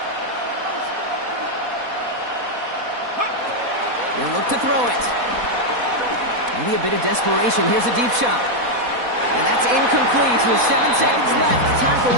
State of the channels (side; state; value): left; late; 4.1 ms